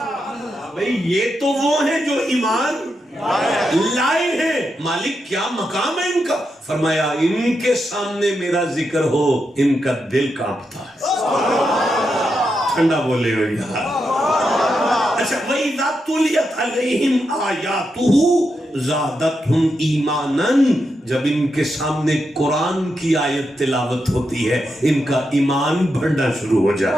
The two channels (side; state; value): both; normal; correlation 0.85